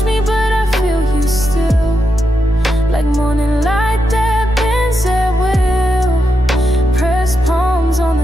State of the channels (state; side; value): normal; both; correlation 0.85